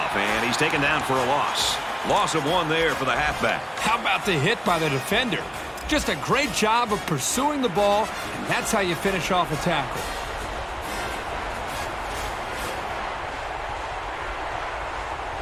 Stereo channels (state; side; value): identical; both; correlation 1.00